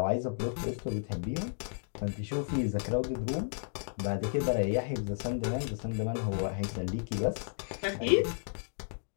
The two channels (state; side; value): silent; right; digital silence